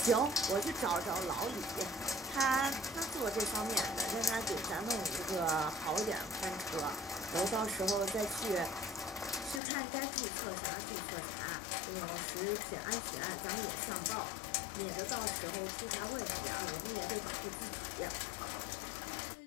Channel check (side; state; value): right; drops out; at 9.6 s